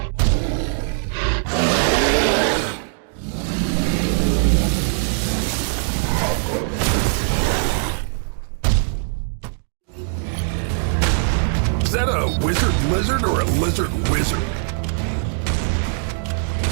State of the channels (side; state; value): left; silent; digital silence